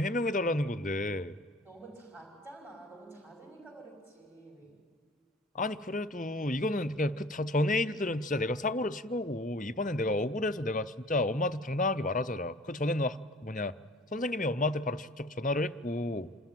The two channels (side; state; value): both; normal; correlation 0.48